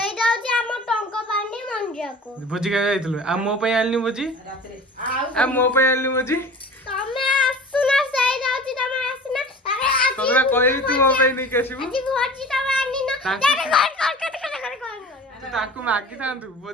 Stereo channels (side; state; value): both; normal; correlation 0.39